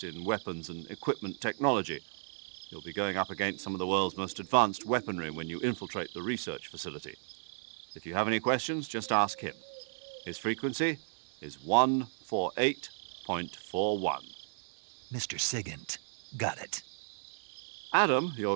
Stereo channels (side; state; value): left; silent; digital silence